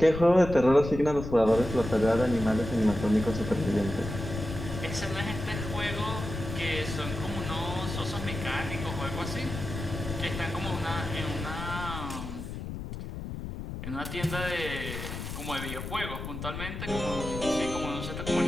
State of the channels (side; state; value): left; noise; rumble, 7 dB below the sound